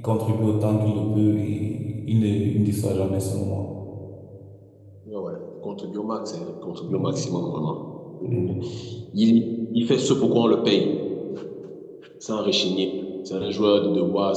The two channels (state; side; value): identical; both; correlation 1.00